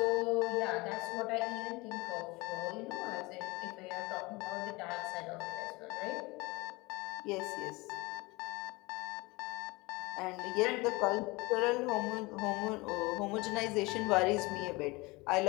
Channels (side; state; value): right; quieter; 23.9 dB